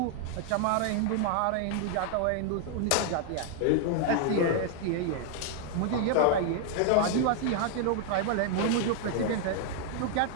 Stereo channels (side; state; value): both; different; correlation 0.00